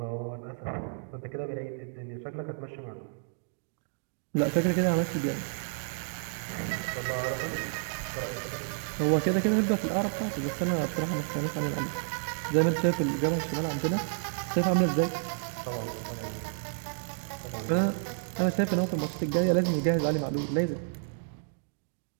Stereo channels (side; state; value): left; silent; 57 dB below the other